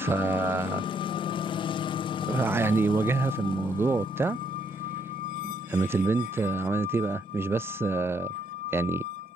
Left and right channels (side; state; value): both; normal; correlation 0.72